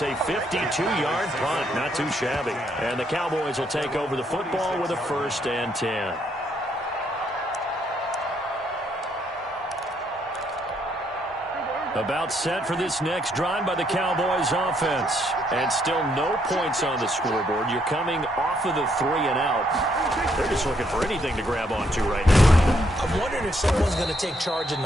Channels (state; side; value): normal; both; correlation 0.73